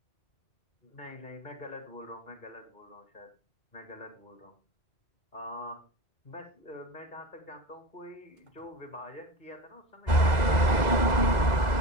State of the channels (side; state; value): right; late; 2.0 ms